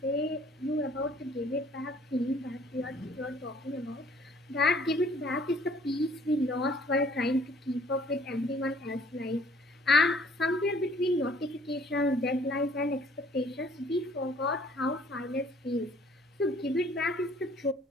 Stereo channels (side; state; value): both; normal; correlation 0.58